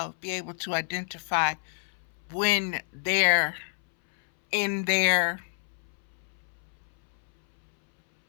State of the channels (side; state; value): right; silent; 59 dB below the other